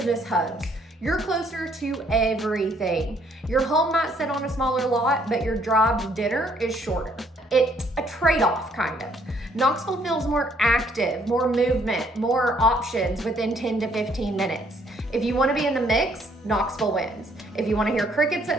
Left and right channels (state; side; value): normal; both; correlation 0.66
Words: hubs. You're closer to everything. Your home might sit on a smaller lot, but your drive to dinner is shorter. It's a trade-off, kind of. Knoxville feels more active, more movement, more options within 10 to 15 minutes. If you want to be in the mix, Knoxville wins. If you want to hear crickets